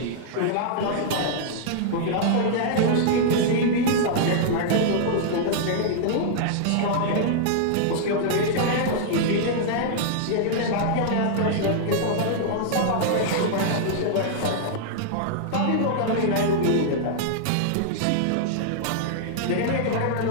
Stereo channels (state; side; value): different; both; correlation -0.01